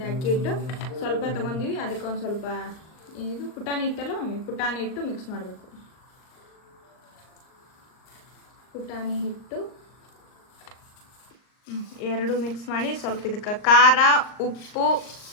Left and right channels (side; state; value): right; late; 39 ms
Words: ಅಕ್ಕಿ ಹಿಟ್ಟು, ಸ್ವಲ್ಪ ತೊಗೊಂಡಿವಿ. ಅದಕ್ಕೆ ಒಂದು ಸ್ವಲ್ಪ ಇದು ಪುಟಾಣಿ ಹಿಟ್ಟಲ್ಲ ಮಮ್ಮಿ, ಪುಟಾಣಿ ಹಿಟ್ಟು ಮಿಕ್ಸ್ ಮಾಡಬೇಕು. ಪುಟಾಣಿ ಹಿಟ್ಟು 2 ಮಿಕ್ಸ್ ಮಾಡಿ, ಸ್ವಲ್ಪ ಇದಕ್ಕೆ ಖಾರ, ಉಪ್ಪು,